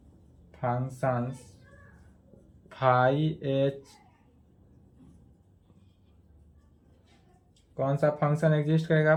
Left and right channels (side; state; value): both; identical; correlation 1.00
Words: functions phi h, कौन सा फंक्शन एग्जिस्ट करेगा,